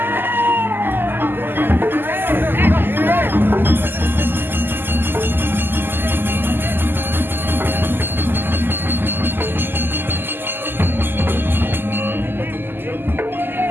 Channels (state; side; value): late; left; 0.096 ms